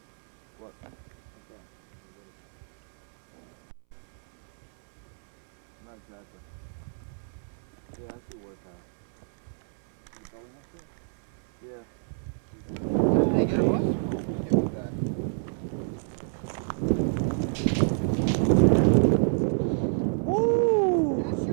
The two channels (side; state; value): left; silent; 59 dB below the other